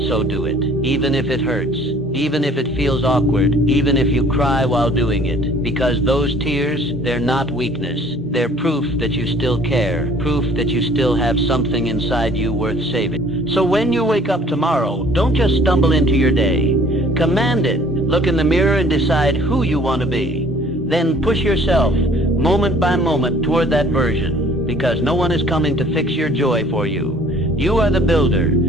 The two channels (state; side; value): normal; both; correlation 0.54